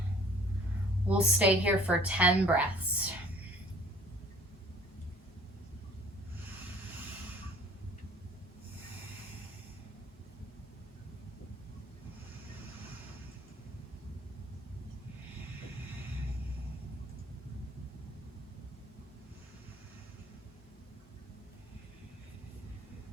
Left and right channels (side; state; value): both; normal; correlation 0.53